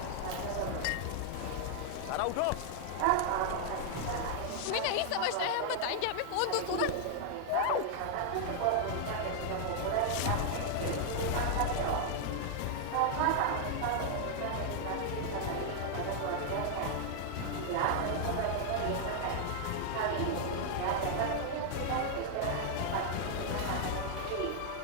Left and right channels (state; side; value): different; both; correlation 0.00